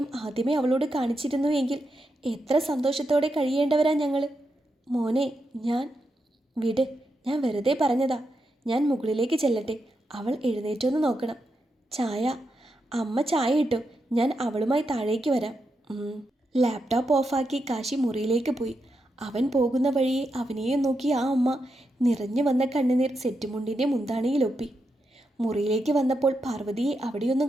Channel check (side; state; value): both; normal; correlation 0.85